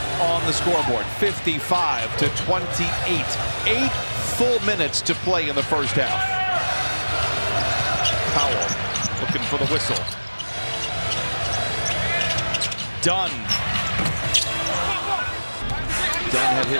on the scoreboard. 55 to 28. 8 full minutes to play in the first half. Powell looking for the whistle. Dunn. Dunn had hit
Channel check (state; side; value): inverted; both; correlation -1.00